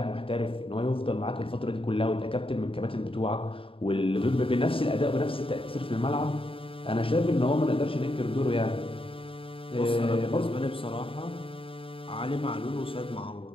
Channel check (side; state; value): right; late; 0.26 ms